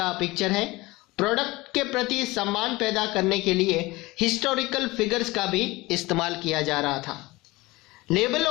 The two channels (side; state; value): right; quieter; 21.3 dB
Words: पिक्चर है। प्रोडक्ट के प्रति सम्मान पैदा करने के लिए हिस्टोरिकल फिगर्स का भी इस्तेमाल किया जा रहा था।